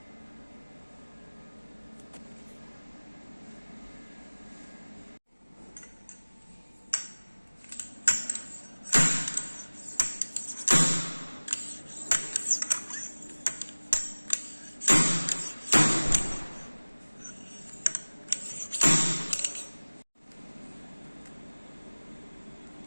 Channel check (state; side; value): inverted; both; correlation -1.00